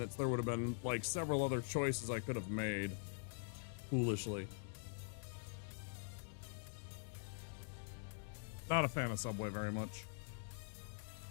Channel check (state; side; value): silent; right; digital silence